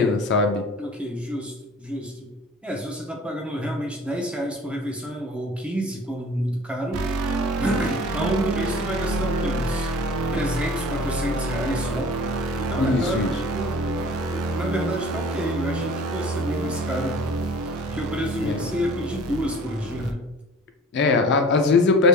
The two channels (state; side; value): normal; both; correlation 0.44